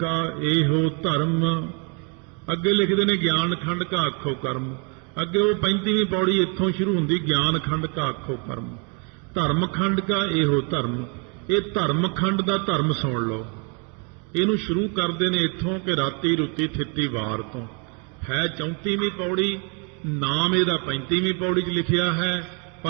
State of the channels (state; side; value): quieter; left; 35.6 dB